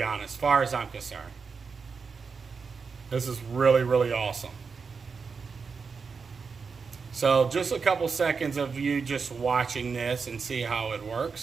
honest, as far as I'm concerned. This is really, really awesome. So just a couple seconds of you just watching this and see how it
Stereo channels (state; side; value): quieter; left; 5.3 dB